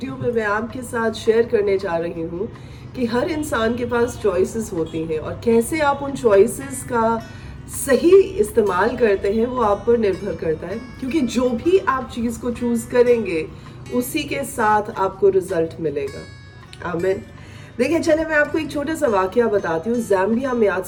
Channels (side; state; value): both; identical; correlation 1.00